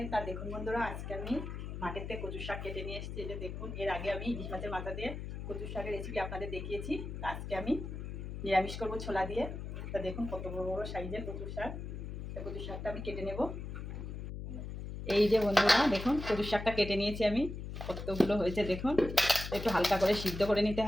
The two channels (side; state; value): left; noise; hum, 7 dB below the sound